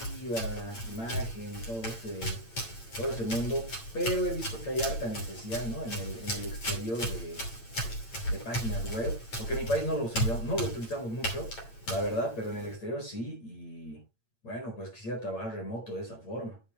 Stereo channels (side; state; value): right; late; 8.8 ms